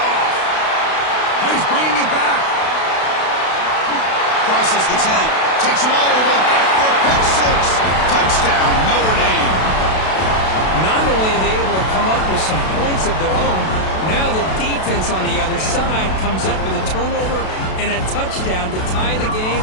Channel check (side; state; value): right; late; 32 ms